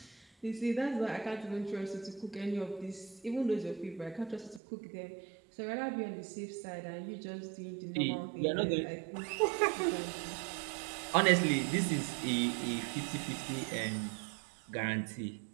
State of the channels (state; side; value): drops out; left; at 4.6 s